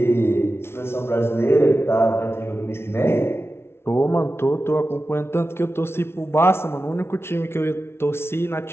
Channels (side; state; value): right; late; 0.12 ms